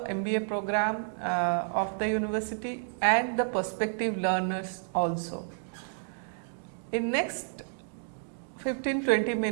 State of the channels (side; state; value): left; silent; digital silence